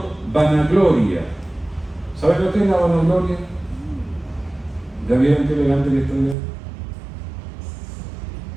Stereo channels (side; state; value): left; drops out; at 6.4 s